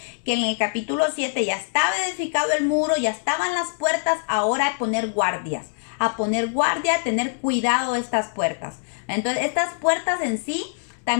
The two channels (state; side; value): silent; right; 63 dB below the other